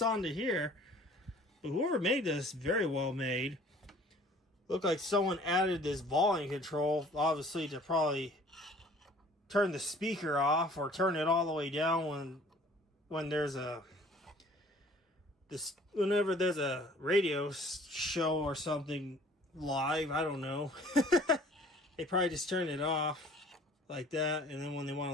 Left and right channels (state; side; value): normal; both; correlation 0.52